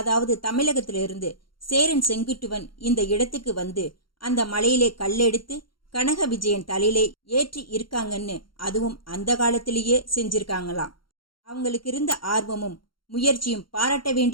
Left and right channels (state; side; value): late; right; 0.73 ms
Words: தமிழகத்திலிருந்து சேரன் செங்குட்டுவன் இந்த இடத்துக்கு வந்து அந்த மலையிலே கல்லெடுத்து கனக விஜயன் தலையிலே ஏற்றி இருக்காங்கன்னு, அதுவும் அந்த காலத்திலேயே செஞ்சிருக்காங்களாம். அவங்களுக்கு இருந்த ஆர்வமும் முயற்சியும் பாராட்ட